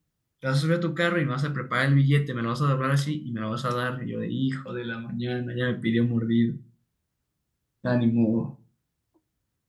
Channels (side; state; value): both; identical; correlation 1.00